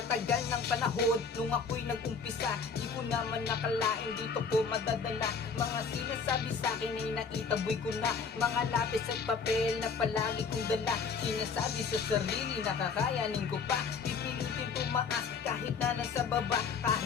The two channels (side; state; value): right; quieter; 5.5 dB